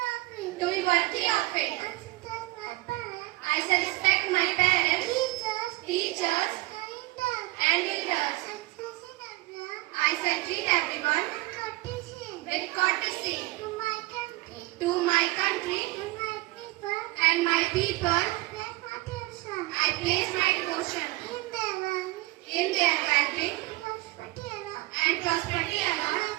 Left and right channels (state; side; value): quieter; left; 20.8 dB